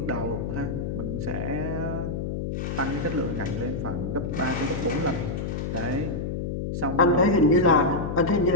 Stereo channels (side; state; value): left; noise; hum, 3 dB below the sound